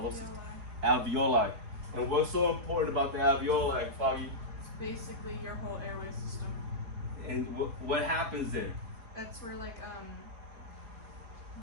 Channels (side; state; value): left; late; 4.1 ms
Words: Alveoli. And what's so important about the alveoli, Foggy? It's basically your whole airway system. And what happens there? That's where the